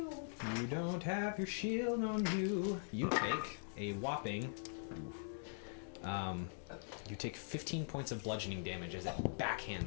You don't have your shield on you. You take a whopping. You take 15 points of bludgeoning damage as it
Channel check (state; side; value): silent; right; digital silence